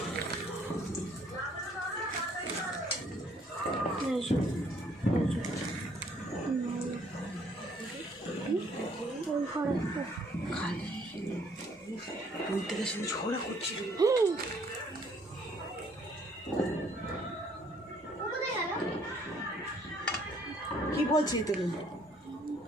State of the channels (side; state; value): both; normal; correlation 0.63